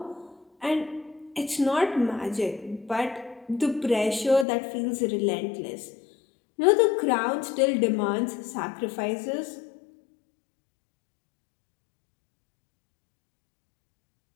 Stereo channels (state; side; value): drops out; right; at 4.5 s